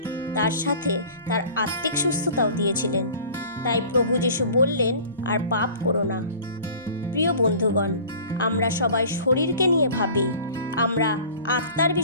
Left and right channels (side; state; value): both; inverted; correlation -0.44